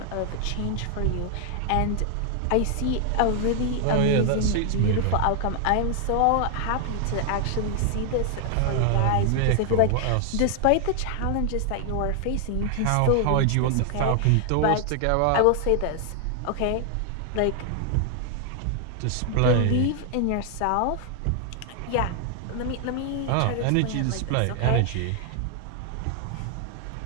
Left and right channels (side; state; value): both; different; correlation 0.00